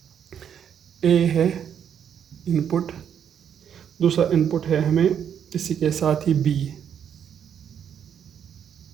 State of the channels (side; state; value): left; quieter; 8.5 dB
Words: a है इनपुट, दूसरा इनपुट है हमें इसी के साथ ही b।